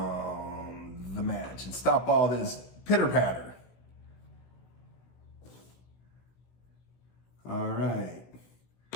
match and stop all this pitter-patter. All right.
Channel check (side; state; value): right; late; 16 ms